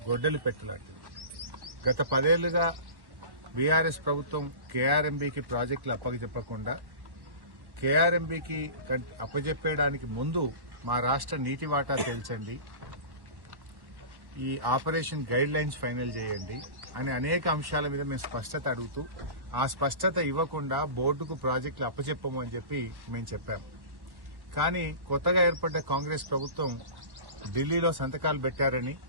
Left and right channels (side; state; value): left; late; 1.1 ms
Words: గొడ్డలి పెట్టలాంటిది. గత 10 ఏళ్లుగా బీఆర్ఎస్ ప్రభుత్వం కేఆర్ఎంబీకి ప్రాజెక్టులు అప్పచెప్పకుండా కేఆర్ఎంబీకి అప్పచెప్పేయడానికి ముందు మా రాష్ట్ర నీటి వాటా తేల్చండి, ఈ ఆపరేషన్ గైడ్ లైన్స్ ఫైనల్ చేయండి అనే అనేక అంశాల మీద మేము స్పష్టత అడుగుతూ ఆ స్పష్టత ఇవ్వకుండా బోర్డుకు ప్రాజెక్టులు అప్పచెప్పము అని చెప్పి మేము చెప్పాం. కానీ కొత్తగా ఏర్పడ్డ కాంగ్రెస్ ప్రభుత్వం ఢిల్లీలో సంతకాలు పెట్టారని